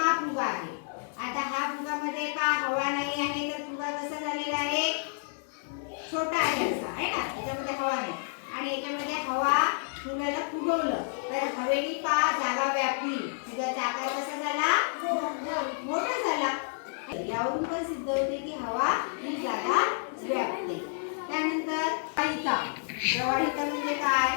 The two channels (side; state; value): right; silent; 58 dB below the other